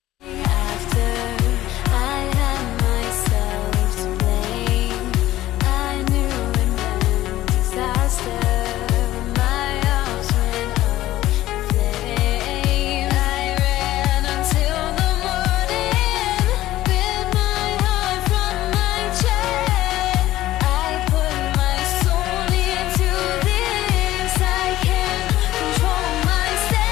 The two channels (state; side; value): quieter; right; 15.1 dB